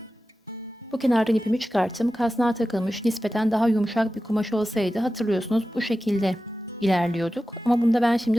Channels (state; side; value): normal; both; correlation 0.94